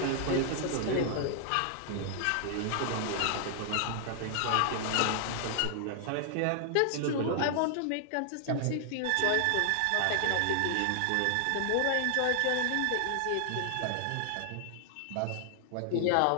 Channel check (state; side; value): different; both; correlation 0.00